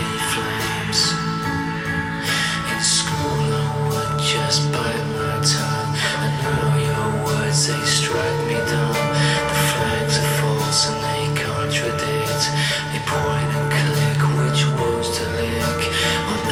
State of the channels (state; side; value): identical; both; correlation 1.00